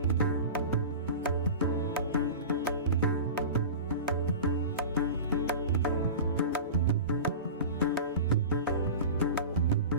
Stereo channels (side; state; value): both; inverted; correlation -0.31